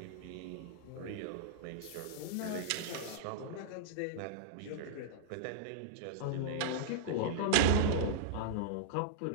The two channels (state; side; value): different; both; correlation -0.02